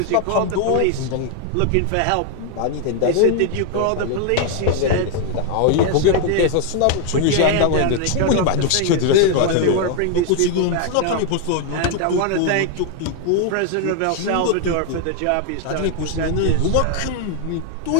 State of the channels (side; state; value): both; different; correlation 0.00